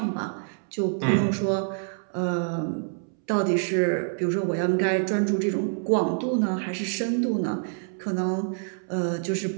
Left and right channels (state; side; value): silent; left; 61 dB below the other